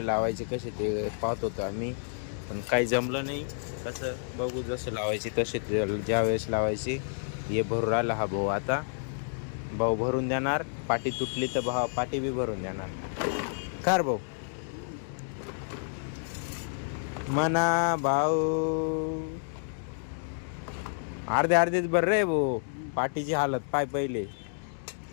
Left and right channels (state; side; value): silent; right; digital silence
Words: कसे ते पाहत होतो आम्ही, पण काही जमलं नाही. कसं बघू, जसं लावायचे तसे ज्या वेळेस लावायची. हे भरून राहिला हा भाऊ. आता भाऊ भरून देणार, पाटी तुटली तर भाऊ पाटी बी भरून देणार. कार भाऊ म्हणा भाऊ अर्धेच भर रे भाऊ. पाटीची हालत पाय पहिले.